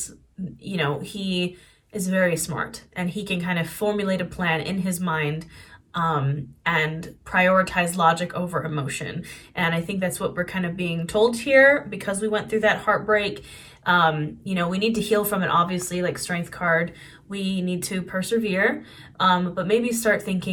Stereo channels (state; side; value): identical; both; correlation 1.00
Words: you know, he is very smart and he can kind of formulate a plan in his mind and prioritize logic over emotion. And I think that's what we're kind of being told here because we went through that heartbreak. You know, we need to heal from it, obviously, like Strength card. We need to persevere, but maybe start